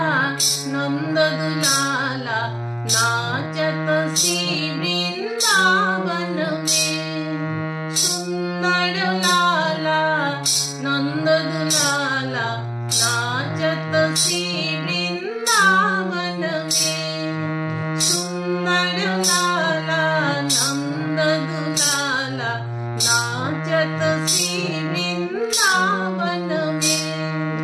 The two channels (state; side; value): identical; both; correlation 1.00